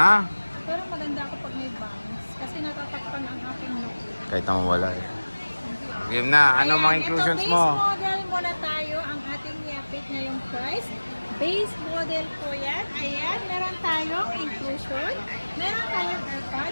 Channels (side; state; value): both; inverted; correlation -1.00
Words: Pero maganda ako pag may bangs. Kasi natatakpan ang aking look. Kahit naman wala eh. Game na. Ano mga inclusions ito, mo? Base model muna tayo. Ang ating i-update ngayong price. Base model po yan. Ayan. Meron tayong inclusion. Meron tayong